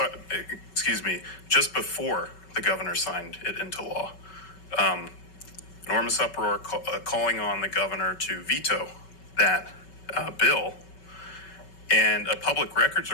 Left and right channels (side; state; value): right; late; 5.3 ms